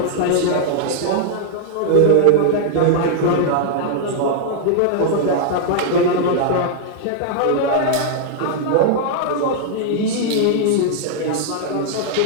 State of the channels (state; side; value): different; both; correlation -0.01